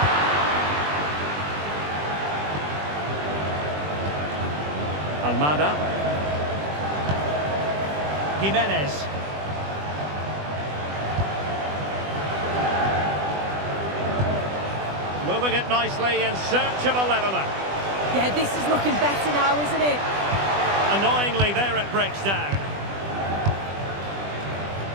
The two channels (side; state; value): left; late; 20 ms